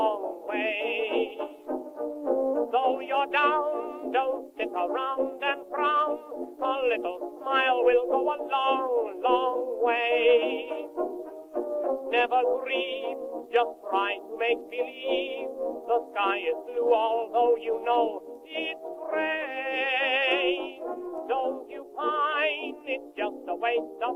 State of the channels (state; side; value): identical; both; correlation 1.00